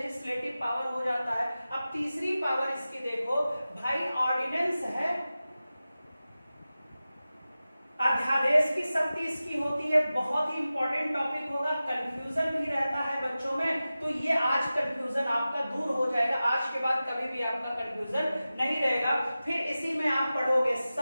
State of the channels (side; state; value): both; inverted; correlation -0.95